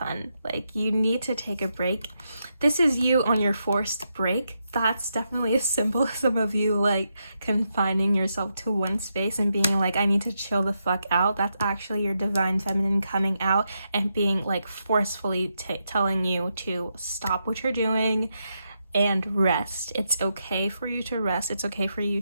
Like, you need to take a break. This is you on your forced break. That's definitely a symbolism of you like confining yourself to one space and being like, I need to chill the fuck out. That's actually your divine feminine coming out and being like forcefully telling you to stop what you're doing and rest. It's okay for you to rest. It's okay for you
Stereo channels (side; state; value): both; inverted; correlation -0.83